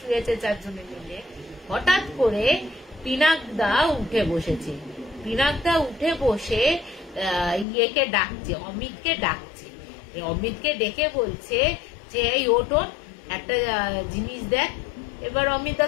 চারজনে মিলে। হঠাৎ করে পিনাকদা উঠে বসেছে, পিনাকদা উঠে বসে ইয়েকে ডাকছে, অমিতকে ডাকছে। অমিতকে ডেকে বলছে যে এই ওঠ, একটা জিনিস দেখ। এবার অমিতা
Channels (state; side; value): drops out; right; at 7.7 s